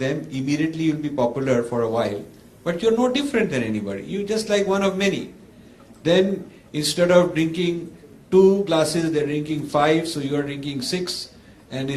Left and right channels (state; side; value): identical; both; correlation 1.00